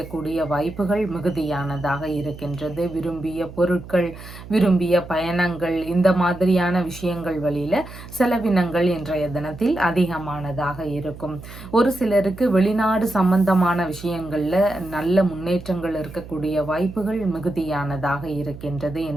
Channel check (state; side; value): noise; right; hum, 15 dB below the sound